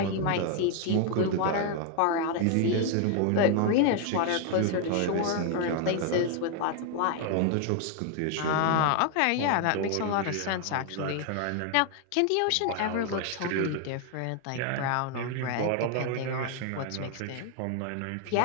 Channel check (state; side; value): different; both; correlation 0.00